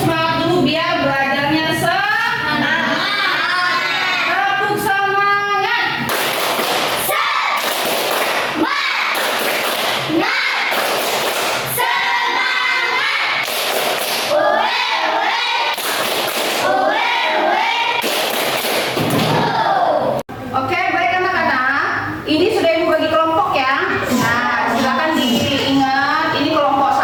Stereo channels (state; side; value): identical; both; correlation 1.00